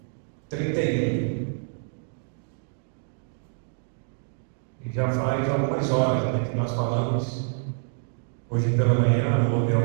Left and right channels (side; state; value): left; silent; 60 dB below the other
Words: 31. E já faz algumas horas, né, que nós falamos. Hoje pela manhã houve a